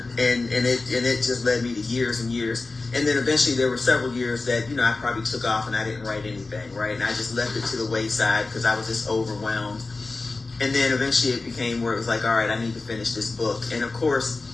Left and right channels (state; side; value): quieter; right; 3.6 dB